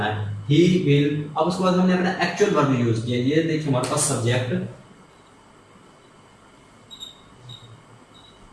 है, ही विल। अब उसके बाद हमने अपना एक्चुअल वर्ब यूज किया। ये देखिए हमारे पास सब्जेक्ट,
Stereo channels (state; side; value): identical; both; correlation 1.00